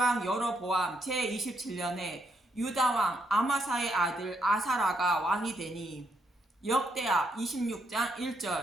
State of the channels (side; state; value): both; normal; correlation 0.77